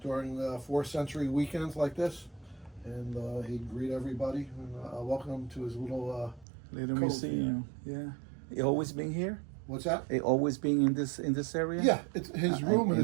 during 4th century weekends like this. And he'd greet everybody and welcome them to his little Little cove museum. Yeah. You always been here? What's that? You always been in this area? Yeah, it's his room his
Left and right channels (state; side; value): drops out; left; at 6.5 s